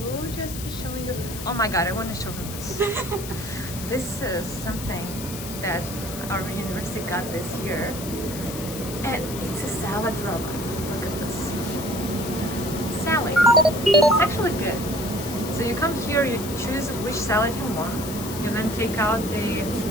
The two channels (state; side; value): noise; left; hiss, 10 dB below the sound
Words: just be showing you. Oh my god, I want to show them this. This is something that our university got this year, and it's a salad roller. Look at this salad. It's actually good. So you come here, you choose which salad you want. You then take out the